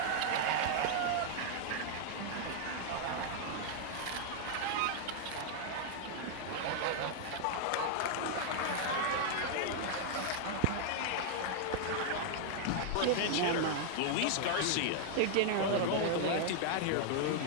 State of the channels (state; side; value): different; both; correlation 0.00